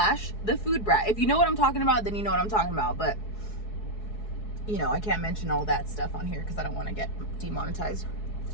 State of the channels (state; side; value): late; right; 4.7 ms